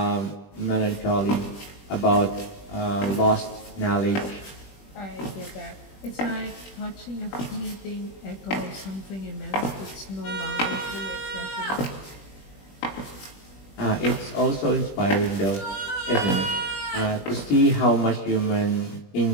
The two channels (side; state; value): right; late; 21 ms